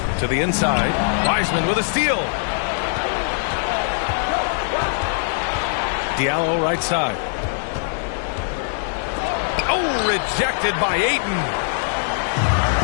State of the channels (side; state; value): right; silent; digital silence